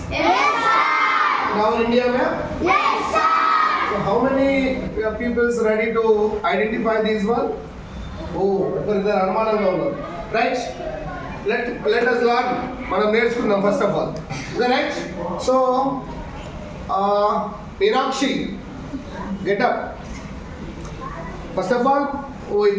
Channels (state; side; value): identical; both; correlation 1.00